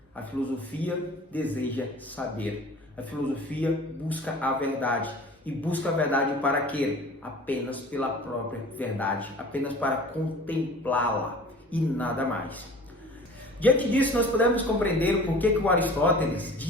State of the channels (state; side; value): normal; both; correlation 0.43